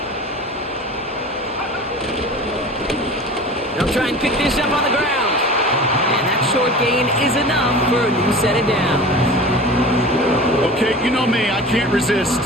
They'll try and pick this up on the ground. And that short gain is enough for a new set of downs. Okay, you know me, I can't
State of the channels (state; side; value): normal; both; correlation 0.37